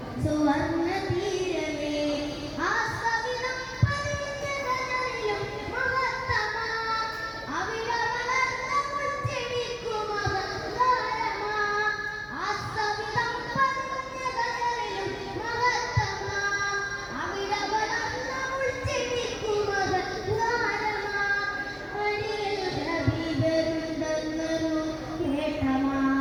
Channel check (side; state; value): both; identical; correlation 1.00